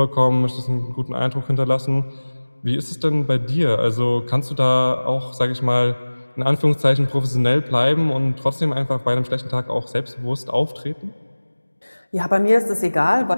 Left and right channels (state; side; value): inverted; both; correlation -1.00